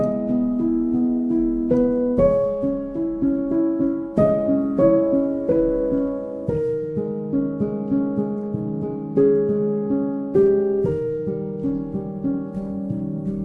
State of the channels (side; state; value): both; identical; correlation 1.00